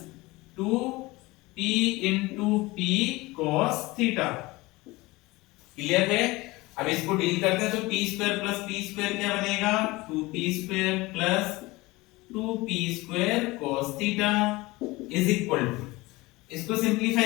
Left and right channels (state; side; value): quieter; right; 21.5 dB